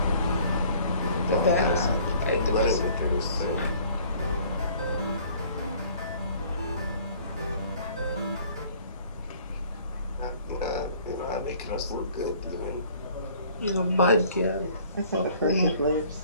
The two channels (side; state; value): both; inverted; correlation -0.55